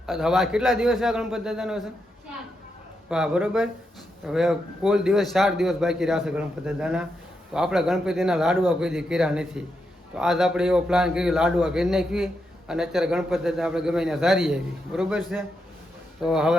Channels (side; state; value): both; normal; correlation 0.84